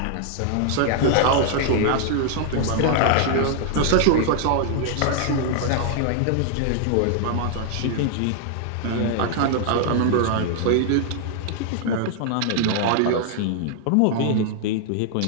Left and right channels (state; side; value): different; both; correlation 0.00